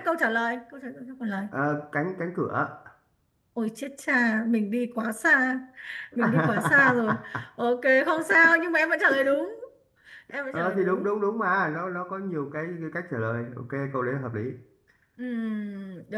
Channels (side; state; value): both; identical; correlation 1.00